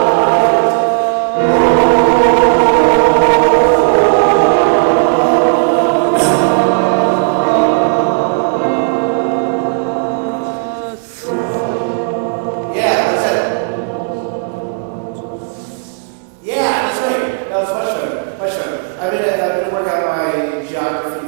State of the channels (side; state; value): left; silent; digital silence